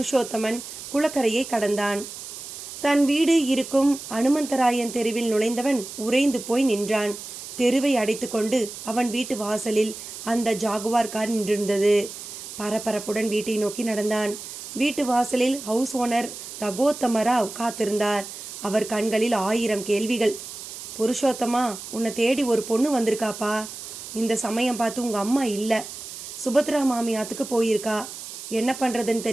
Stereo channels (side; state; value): right; noise; hiss, 11 dB below the sound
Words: குளக்கரையை கடந்தான். தன் வீடு இருக்கும் அனுமந்தராயன் தெருவில் நுழைந்தவன் உறைந்து போய் நின்றான். தெருவை அடைத்து கொண்டு அவன் வீட்டு வாசலில் அந்த ஜாகுவார் கார் நின்றிருந்தது. பரபரப்புடன் வீட்டை நோக்கி நடந்தான். வீட்டு வாசலில் ஹவுஸ் ஓனர் ரகோத்தமராவ் காத்திருந்தார். அவர் கண்களில் 1000 கேள்விகள். புருஷோத்தமா, உன்னை தேடி ஒரு பொண்ணு வந்திருக்காப்பா. இந்த சமயம் பார்த்து உங்கள் அம்மா இல்லை, சுபத்ரா மாமியாத்துக்கு போயிருக்கா. என்ன பண்ணுறதுன்னு